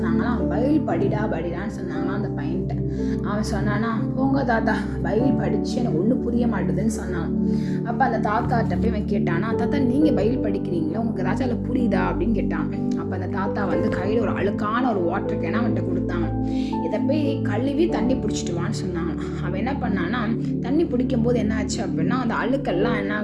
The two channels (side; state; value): both; identical; correlation 1.00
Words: பைபிள் படிடான்னு சொன்னாங்களாம் அந்த பையன்கிட்ட. அவன் சொன்னானா, போங்க தாத்தா, பைபிள் படித்து எனக்கு ஒன்றும் புரிய மாட்டுதுன்னு சொன்னான். அப்போ அந்த தாத்தாட்ட போய் இவன் கேட்டானா, தாத்தா நீங்கள் பைபிள் படிக்கிறீங்களா, உங்களுக்கு ஏதாச்சும் அதில் புரியுதா அப்படின்னு கேட்டான். அப்போ அந்த தாத்தா கையில் ஒரு அழுக்கான ஒரு வாட்டர் கேனை அவன்கிட்ட கொடுத்தாங்க. இதை போய் கழுவி தண்ணி பிடிச்சிட்டு வான்னு சொன்னாங்க. அவன் என்ன பண்ணான்னா, தண்ணி பிடிக்கும் போது என்ன ஆச்சு அப்படின்னா, அந்த அழுக்கெல்லாம் என்ன